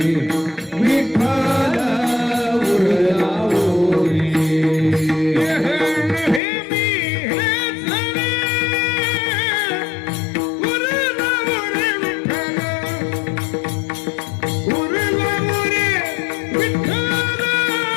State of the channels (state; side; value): drops out; right; at 6.4 s